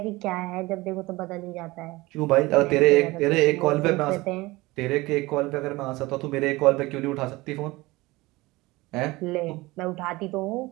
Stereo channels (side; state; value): left; quieter; 21.0 dB